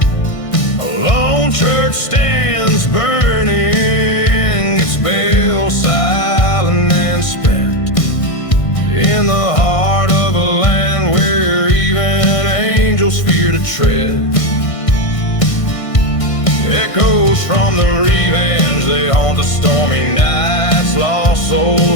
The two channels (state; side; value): late; right; 1.6 ms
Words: A lone church stands burning, its bell silent and spent, in the heart of a land where even angels fear to tread. Echoes from the revenge, they haunt the stormy nights. Lost